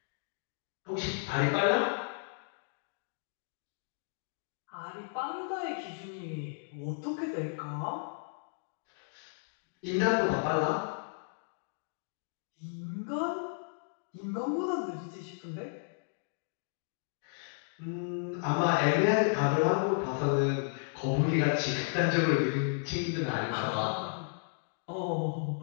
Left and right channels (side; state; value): right; silent; digital silence